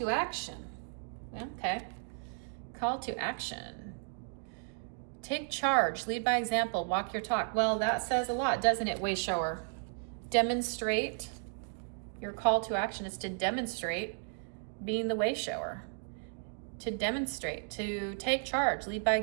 action. Okay. Call to action. Take charge. Lead by example. Walk your talk. Well, that says a lot, doesn't it, Wayshower? Demonstrate. Your call to action is to demonstrate being the Wayshower, to demonstrate, to take charge, lead by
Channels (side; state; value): left; silent; 55 dB below the other